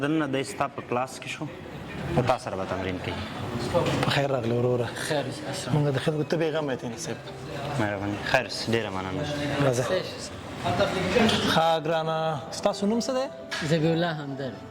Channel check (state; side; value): identical; both; correlation 1.00